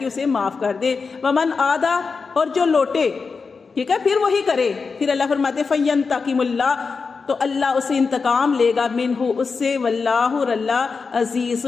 اسے معاف کر دے. ومن عادا اور جو لوٹے، ٹھیک ہے، پھر وہی کرے. پھر اللہ فرماتے فینتقم اللہ تو اللہ اسے انتقام لے گا منہ اس سے، واللہ اور اللہ عزیز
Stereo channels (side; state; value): right; quieter; 4.9 dB